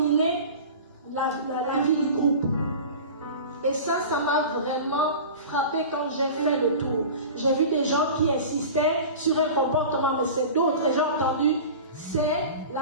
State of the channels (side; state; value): both; inverted; correlation -0.35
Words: la vie du groupe. Et ça m'a vraiment frappé quand j'ai fait le tour. J'ai vu des gens qui insistaient sur un comportement, mais c'est d'autres. Et j'ai entendu, c'est